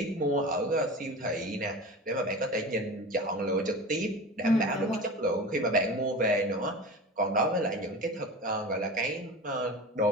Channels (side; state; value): both; normal; correlation 0.32